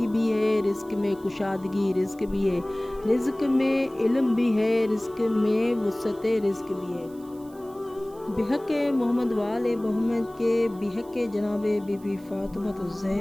بھی ہے، رزق میں کشادگی رزق بھی ہے، رزق میں علم بھی ہے، رزق میں وسعت رزق بھی ہے۔ بحق محمد وآل محمد کے، بحق جناب بی بی فاطمۃ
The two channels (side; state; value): right; noise; hiss, 27 dB below the sound